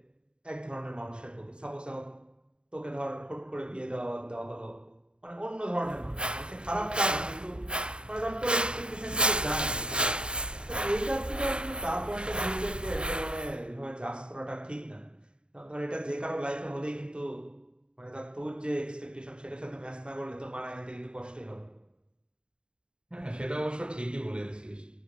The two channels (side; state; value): left; late; 0.050 ms